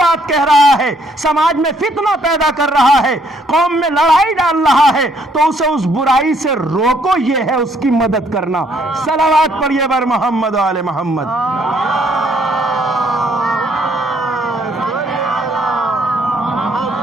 بات کہہ رہا ہے، سماج میں فتنہ پیدا کر رہا ہے، قوم میں لڑائی ڈال رہا ہے، تو اسے اس برائی سے روکو، یہ ہے اس کی مدد کرنا. صلوات پڑھیے بر محمد و آل محمد.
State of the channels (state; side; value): normal; both; correlation 0.67